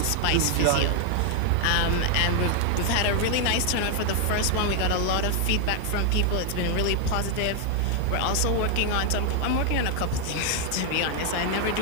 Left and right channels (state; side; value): different; both; correlation 0.00